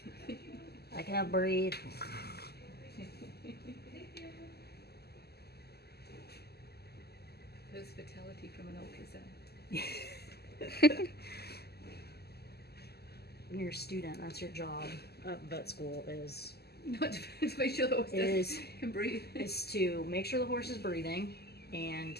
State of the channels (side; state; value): right; late; 0.46 ms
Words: that. I can't breathe. There's fatality from an ultrasound. When you're a student, that's your job at vet school is Not to make sure the horse Is- can breathe. is to make sure the horse is breathing, and